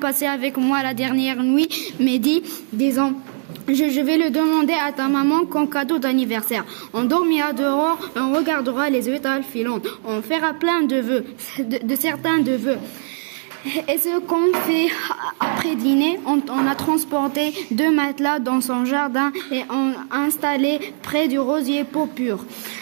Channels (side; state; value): left; silent; digital silence